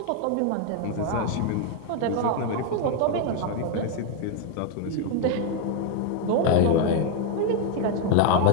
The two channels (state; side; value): different; both; correlation 0.01